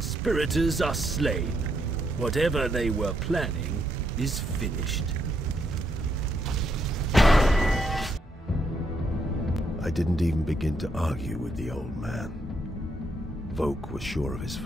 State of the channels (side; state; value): both; normal; correlation 0.76